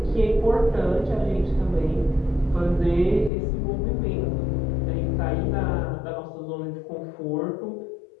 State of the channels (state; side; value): drops out; right; at 3.3 s